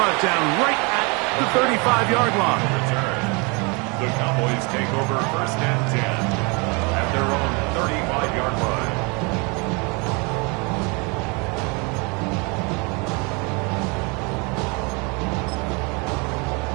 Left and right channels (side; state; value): left; quieter; 30.4 dB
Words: down right at the 35-yard line. The Cowboys take over first and 10 at their own 35-yard line.